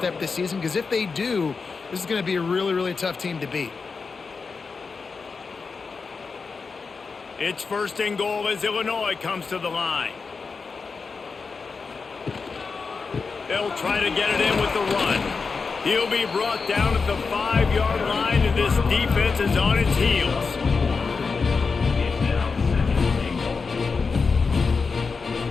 this season, because if they do, this is going to be a really, really tough team to beat. It's 1st and goal as Illinois comes to the line. They'll try to get it in with the run. He'll be brought down at the 5-yard line, and this defense is on its heels.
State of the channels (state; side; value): quieter; right; 4.8 dB